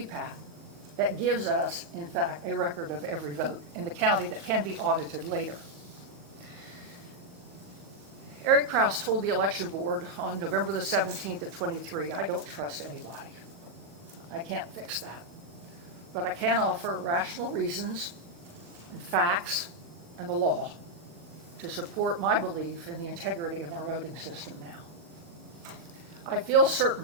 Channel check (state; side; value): late; left; 40 ms